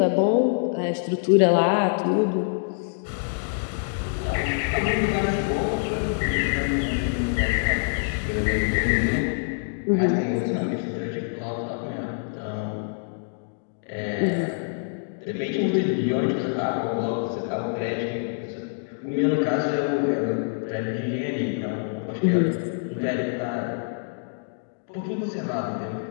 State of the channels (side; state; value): right; silent; digital silence